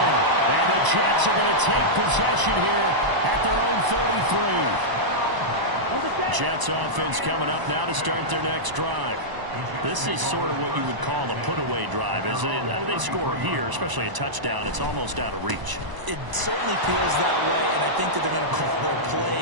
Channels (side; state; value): left; late; 1.0 ms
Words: And the Jets are going to take possession here at their own 33. Jets offense coming up now to start their next drive. This is sort of what you would call a put-away drive. As they score here, especially a touchdown, it's almost out of reach. It certainly feels that way, and I think that they're going to call their